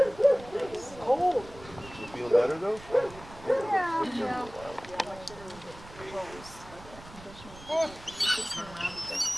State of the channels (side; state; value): right; noise; rumble, 18 dB below the sound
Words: Cold. You feel better though? Yeah.